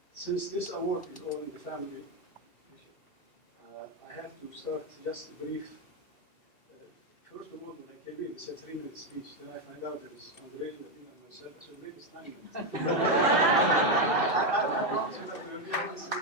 Since this award is all in the family, I have to start just brief. First of all, when I came in, they said 3-minute speech. Then I find out there is Andre, Nabil, and myself. So maybe it's 9 minutes. I promise you that there will be only 3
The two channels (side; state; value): right; late; 2.6 ms